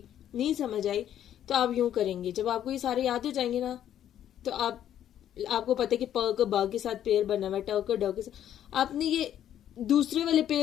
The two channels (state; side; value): quieter; right; 10.7 dB